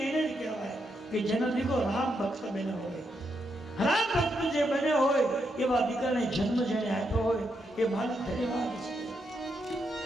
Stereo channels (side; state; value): both; normal; correlation 0.81